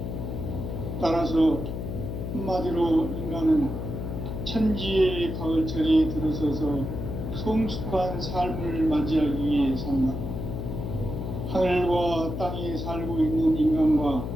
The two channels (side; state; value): left; noise; hum, 5 dB below the sound